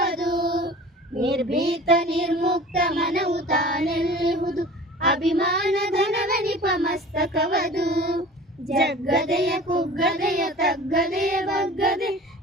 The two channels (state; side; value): normal; both; correlation 0.42